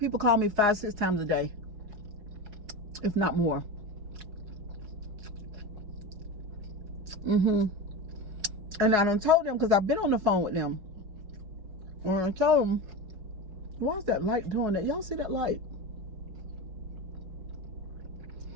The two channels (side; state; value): left; late; 4.8 ms